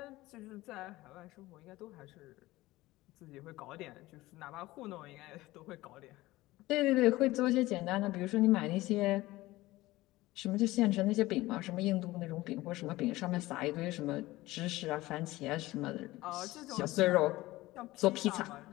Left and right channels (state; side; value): quieter; right; 18.4 dB